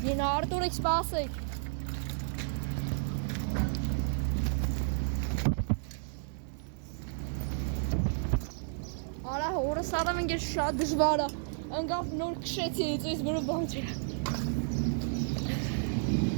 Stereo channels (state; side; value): silent; left; digital silence